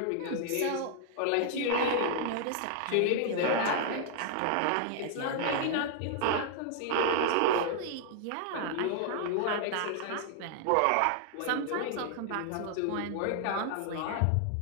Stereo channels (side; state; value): both; different; correlation 0.00